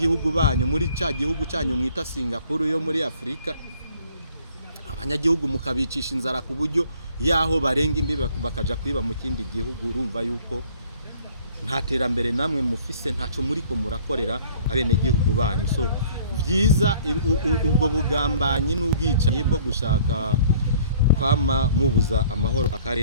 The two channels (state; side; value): inverted; both; correlation -0.55